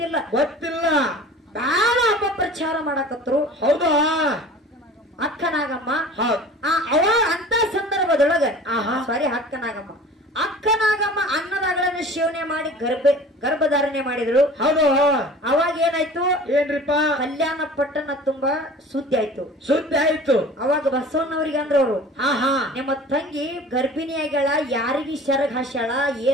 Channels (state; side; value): normal; both; correlation 0.42